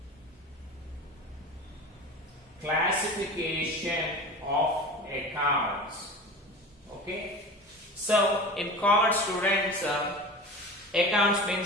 Classification of accounts. Okay. So in common students, accounts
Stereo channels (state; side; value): normal; both; correlation 0.33